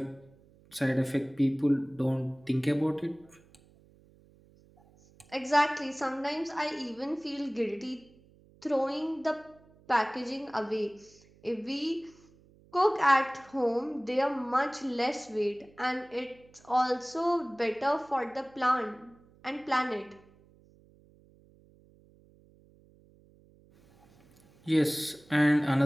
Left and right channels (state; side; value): noise; right; hum, 28 dB below the sound